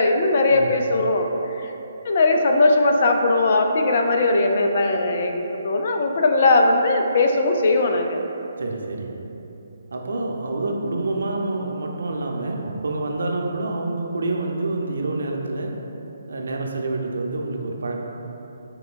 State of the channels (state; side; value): inverted; both; correlation -0.74